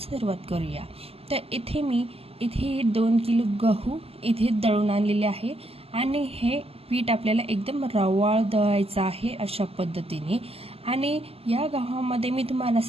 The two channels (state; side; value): late; left; 0.28 ms